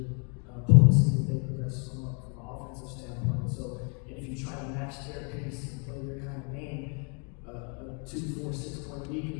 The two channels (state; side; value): quieter; right; 38.3 dB